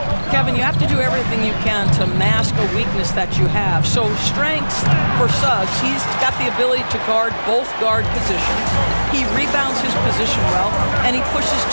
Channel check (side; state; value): both; inverted; correlation -1.00